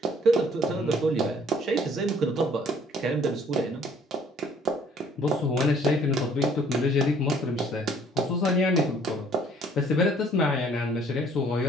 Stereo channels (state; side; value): normal; both; correlation 0.58